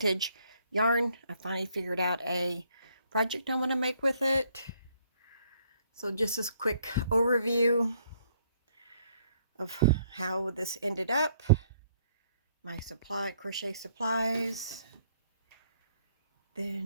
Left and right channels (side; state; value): both; inverted; correlation -0.67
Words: yarn. I finally figured out a project I want to make with it. So just this quick overview of how this ended up. My crochet supplies.